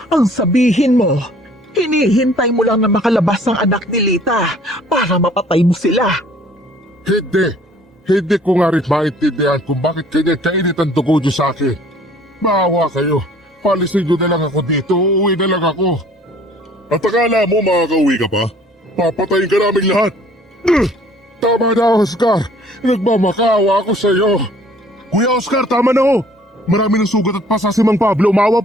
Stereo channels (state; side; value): normal; both; correlation 0.55